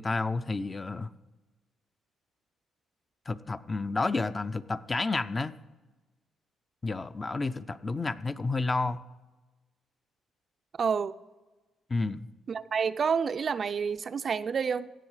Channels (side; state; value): both; normal; correlation 0.86